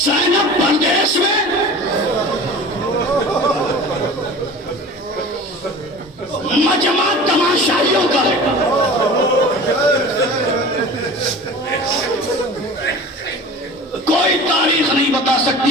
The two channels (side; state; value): both; normal; correlation 0.38